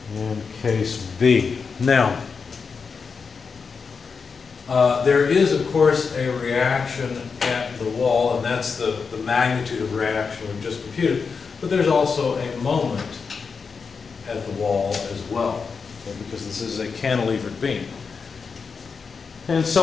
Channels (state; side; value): quieter; right; 5.3 dB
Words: And case B. Now, there is, of course, a reaction at the wall, and that's the magnitude of reaction we've just computed. But there's also a moment at the wall as well, okay, because this is a cantilevered beam. And